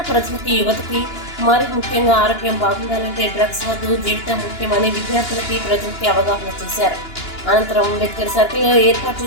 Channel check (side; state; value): right; late; 2.9 ms